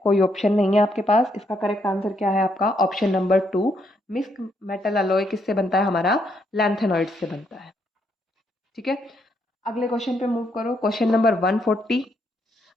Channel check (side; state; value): both; normal; correlation 0.75